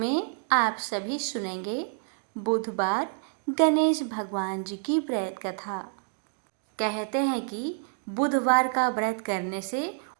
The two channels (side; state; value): left; silent; 59 dB below the other